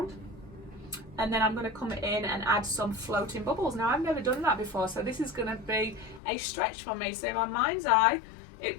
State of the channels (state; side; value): drops out; right; at 6.2 s